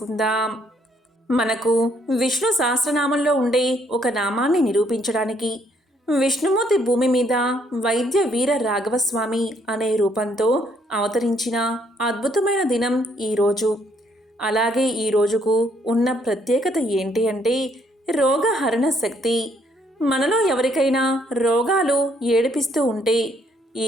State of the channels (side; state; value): both; normal; correlation 0.69